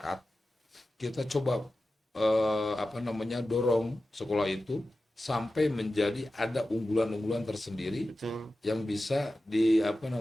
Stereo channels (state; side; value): normal; both; correlation 0.94